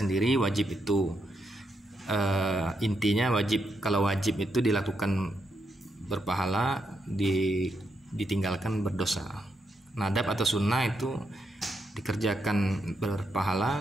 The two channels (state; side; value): normal; both; correlation 0.81